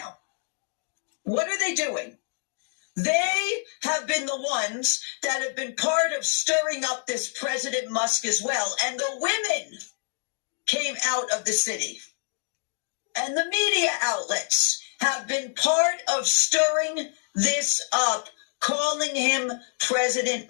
What are they doing? They have been the ones that have been part of stirring up this President Musk as well. And the women came out of the city. And the media outlets have been part of stirring this up, calling him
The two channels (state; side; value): silent; right; digital silence